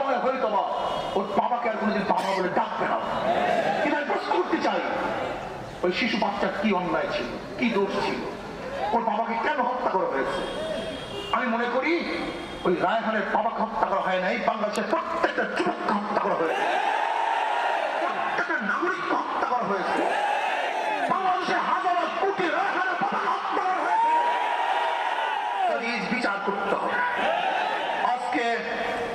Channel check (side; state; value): both; identical; correlation 1.00